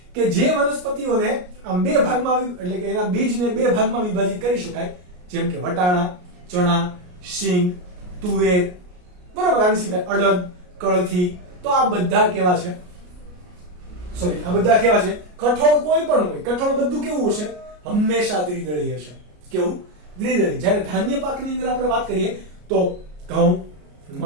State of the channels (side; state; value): left; late; 33 ms